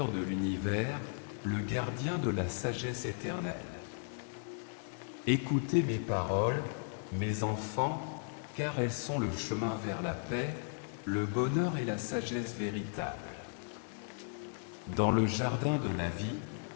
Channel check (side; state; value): right; silent; digital silence